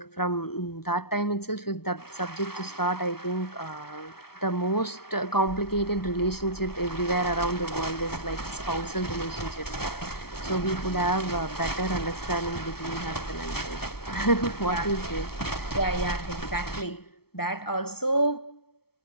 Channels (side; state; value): right; late; 0.95 ms